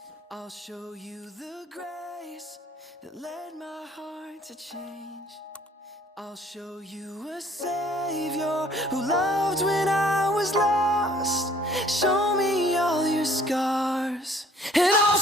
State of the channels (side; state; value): both; normal; correlation 0.57